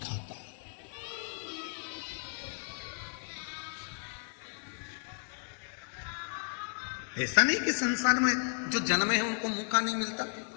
है। ऐसा नहीं कि संसार में जो जन्मे हैं उनको मौका नहीं मिलता,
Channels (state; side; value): silent; right; 55 dB below the other